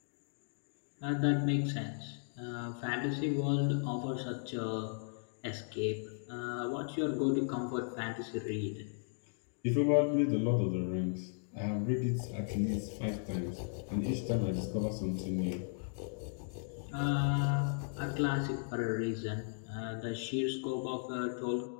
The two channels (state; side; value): silent; right; digital silence